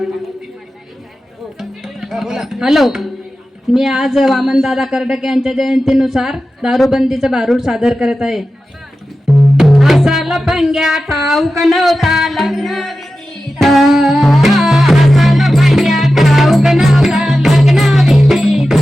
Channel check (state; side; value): normal; both; correlation 0.93